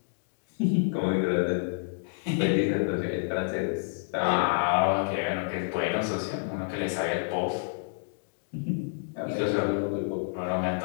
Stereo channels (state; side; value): silent; right; digital silence